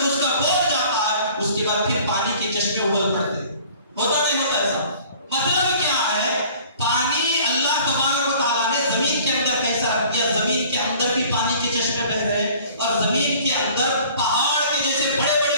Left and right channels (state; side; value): inverted; both; correlation -0.50